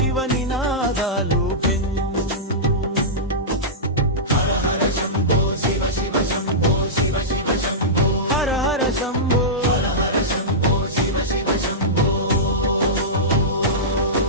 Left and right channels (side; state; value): both; normal; correlation -0.14